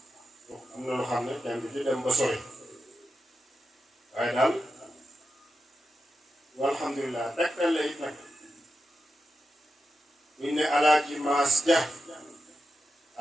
am na lu xam ne kenn du ci dem ba sori waaye daal walhamdulilah tegtal la it nag buñ ne alaaji maas ja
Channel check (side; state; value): both; normal; correlation 0.89